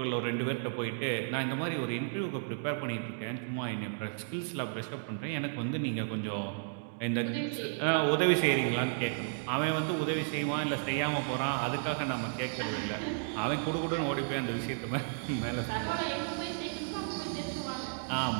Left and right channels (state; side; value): silent; left; digital silence